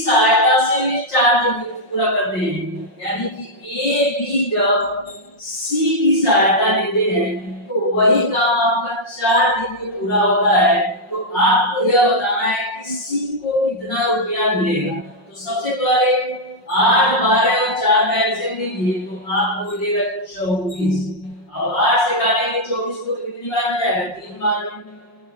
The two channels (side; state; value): right; late; 5.5 ms